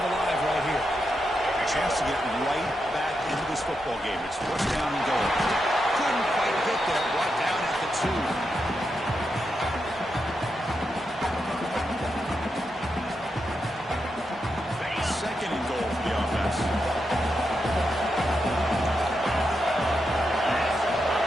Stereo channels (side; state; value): both; normal; correlation 0.85